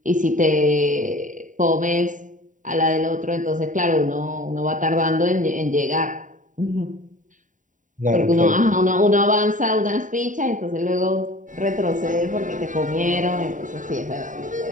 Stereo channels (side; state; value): left; late; 0.37 ms